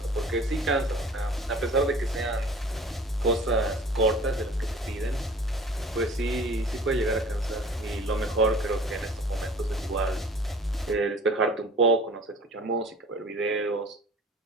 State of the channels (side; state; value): both; normal; correlation 0.46